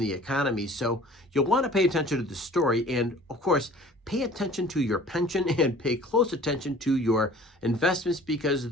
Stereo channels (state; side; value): normal; both; correlation 0.48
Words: economy. So you'll want to pay attention to the story, and of course, pay attention to your pension and pay close attention to your investments,